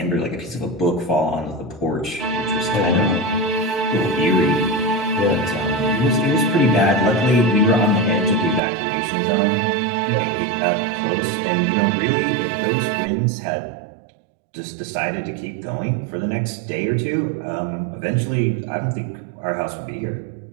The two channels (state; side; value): drops out; left; at 8.6 s